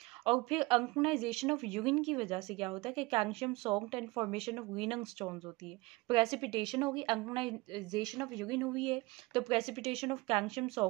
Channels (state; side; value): quieter; left; 22.6 dB